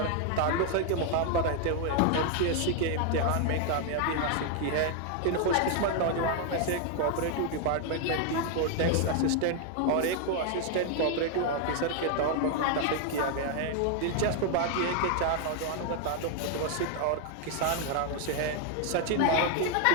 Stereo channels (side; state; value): both; different; correlation 0.00